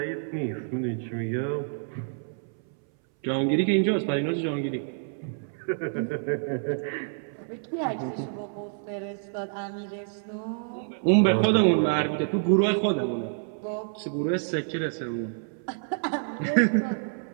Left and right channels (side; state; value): left; silent; 59 dB below the other